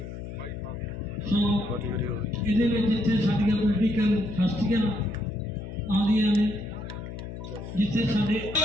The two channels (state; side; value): noise; left; hum, 9 dB below the sound